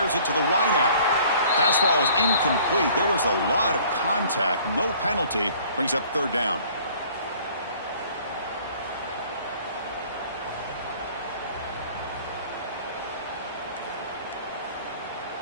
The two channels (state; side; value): inverted; both; correlation -0.53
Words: it to the wideout. Pass ball is incomplete. There was a lot of contact. No penalty. Brings up 3rd down.